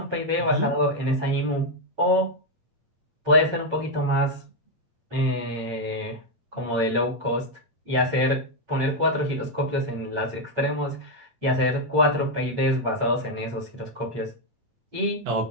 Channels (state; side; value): late; left; 8.6 ms